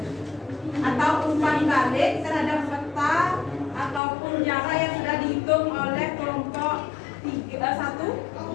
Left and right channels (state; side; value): drops out; right; at 4.0 s